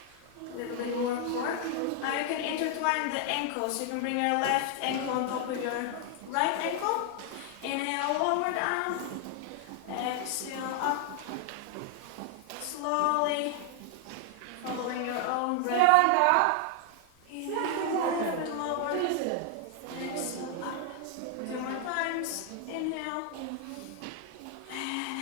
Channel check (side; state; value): both; different; correlation 0.00